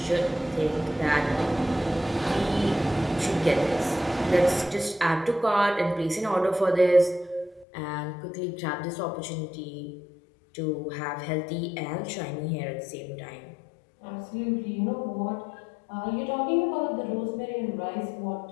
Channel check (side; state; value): right; drops out; at 7.7 s